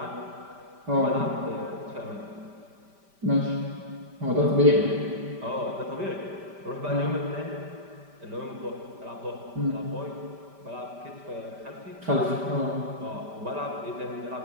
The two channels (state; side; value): late; left; 5.1 ms